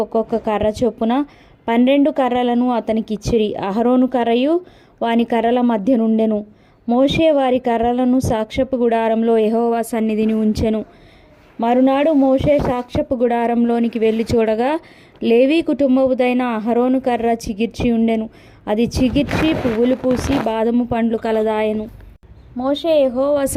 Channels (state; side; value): identical; both; correlation 1.00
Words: ఒక్కొక్క కర్ర చొప్పున 12 కర్రలను అతనికిచ్చిరి. అహరోను కర్రయు వాని కర్రల మధ్య నుండెను. మోషే వారి కర్రలను సాక్ష్యపు గుడారంలో యెహోవా సన్నిధిని ఉంచెను. మరునాడు మోషే సాక్ష్యపు గుడారంలోనికి వెళ్ళి చూడగా, లేవీ కుటుంబముదైన అహరోను కర్ర చిగిర్చి ఉండెను. అది చిగిర్చి పువ్వులు పూసి బాదము పండ్లు కలదాయెను. మోషే యెహోవా